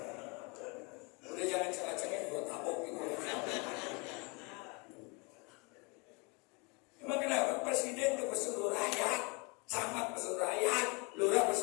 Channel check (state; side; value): quieter; right; 29.9 dB